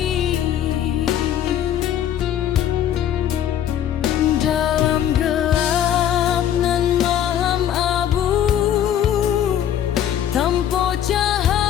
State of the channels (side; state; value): right; quieter; 10.3 dB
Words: Dalam gelap nan malam abu, tanpa